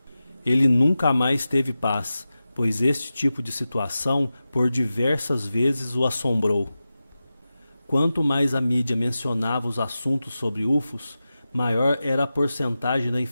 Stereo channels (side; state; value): both; inverted; correlation -0.93